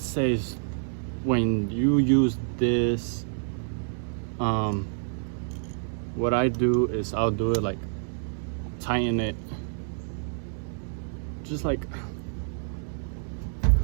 when you use this, what I do is I'll do it like tighten it, just like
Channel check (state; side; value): silent; left; digital silence